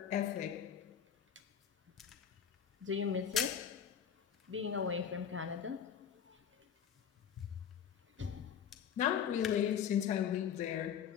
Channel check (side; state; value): right; quieter; 8.4 dB